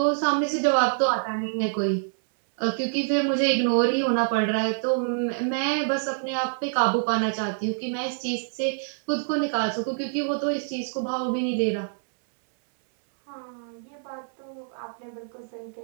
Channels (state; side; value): silent; left; 61 dB below the other